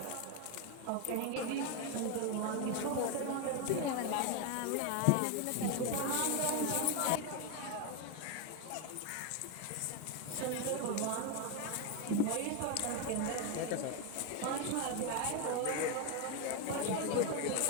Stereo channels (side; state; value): both; different; correlation 0.02